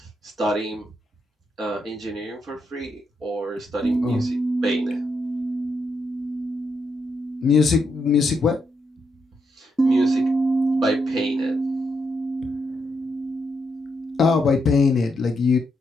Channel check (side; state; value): both; normal; correlation 0.81